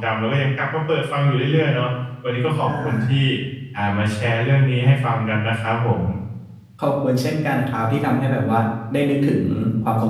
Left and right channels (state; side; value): identical; both; correlation 1.00